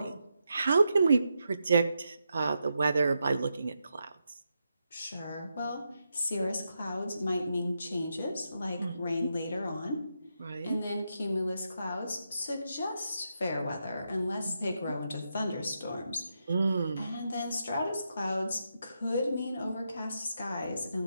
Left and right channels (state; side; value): inverted; both; correlation -0.84